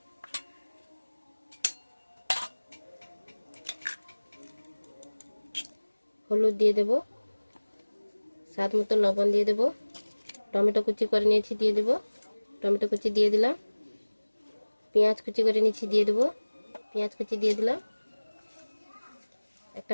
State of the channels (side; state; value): both; inverted; correlation -1.00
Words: হলুদ দিয়ে দেব, স্বাদ মতো লবণ দিয়ে দেব। টমেটো কুচি করে নিয়েছি, দিয়ে দেব। টমেটো কুচি দিয়ে দিলাম। পেঁয়াজ কুচি করে নিয়েছি, দিয়ে দেব। পেঁয়াজ কুচি দিয়ে দিলাম।